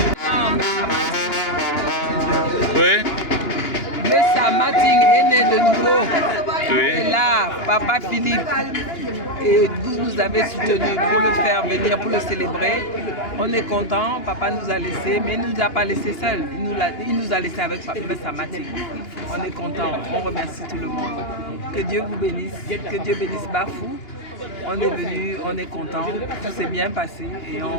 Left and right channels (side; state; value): right; late; 2.9 ms